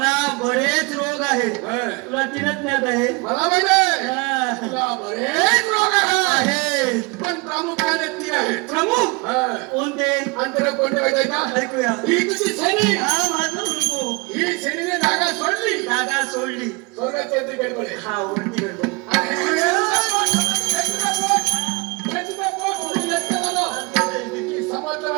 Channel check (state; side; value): quieter; left; 27.7 dB